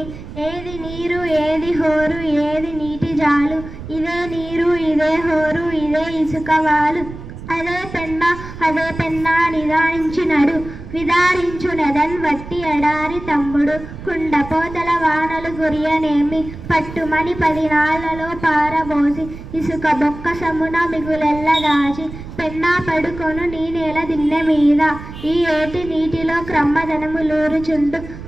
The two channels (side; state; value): right; noise; rumble, 13 dB below the sound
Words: ఏది నీరు ఏది హోరు ఏది నీటి జాలు, ఇదే నీరు ఇదే హోరు ఇదే ఇసుకవాలు. అదే పెన్నా నిదానించినడు, విదారించునదన్ వట్టి ఎడారి తమ్ముడు. కుండపోతల వానలు గురియనేమి, పట్టుమని 10 నాళ్లలో పారబోసి, ఇసుక బొక్క సమున మిగులెల్ల దాచి, పెన్నా పడుకొను నీ నేల దిన్నె మీద. ఈ ఏటి నీటిలో క్రమ్మదనములూరుచుండు,